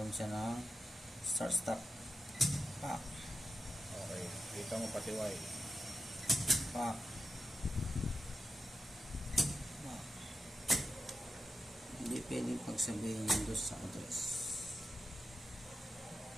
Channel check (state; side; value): normal; both; correlation 0.89